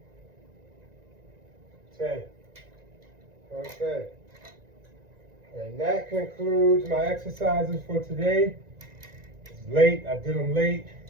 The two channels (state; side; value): late; left; 1.9 ms